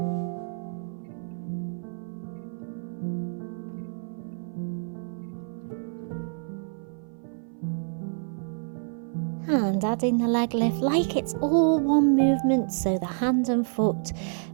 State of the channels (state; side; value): silent; left; 56 dB below the other